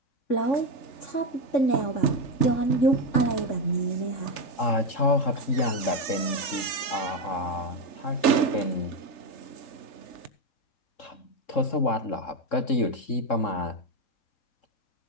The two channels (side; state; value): right; late; 3.3 ms